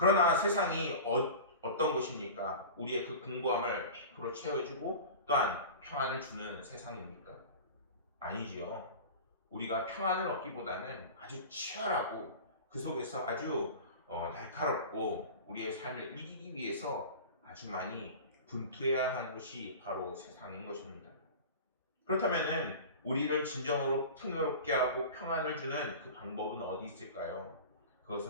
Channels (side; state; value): both; inverted; correlation -0.34